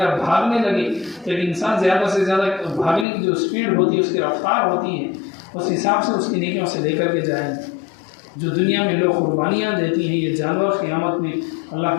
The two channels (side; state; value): right; drops out; at 3.1 s